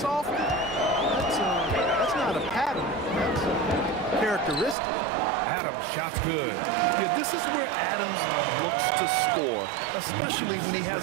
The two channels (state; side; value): drops out; left; at 4.8 s